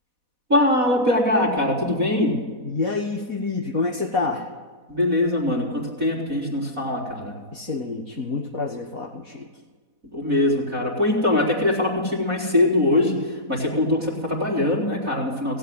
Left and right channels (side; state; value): left; late; 4.1 ms